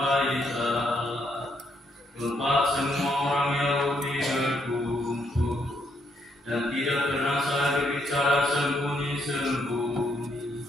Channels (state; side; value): normal; both; correlation 0.74